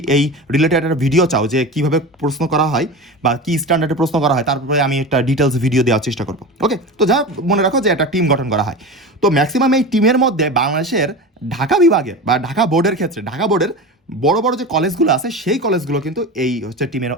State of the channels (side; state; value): both; normal; correlation 0.28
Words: এই রিলেটেড একটা ভিডিও চাও যে কীভাবে প্রশ্ন করা হয় বা কী স্ট্যান্ডার্ডে প্রশ্ন করা হয়, তারপরে আমি একটা ডিটেলস ভিডিও দেওয়ার চেষ্টা করবো। ওকে, তো যা মনে রাখো যে একটা টিম গঠন করা হয়। তো ম্যাক্সিমাম এই টিমের মধ্যে বাংলাদেশের ঢাকা বিভাগের বা ঢাকা বোর্ডের ক্ষেত্রে ঢাকা বোর্ডের বড় বড় যে কলেজগুলো আছে সেই কলেজগুলো কিন্তু এই হচ্ছে টিমের